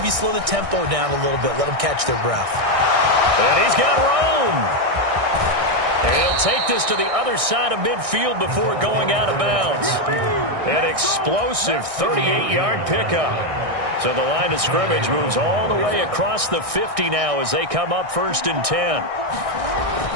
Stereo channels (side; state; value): left; late; 1.6 ms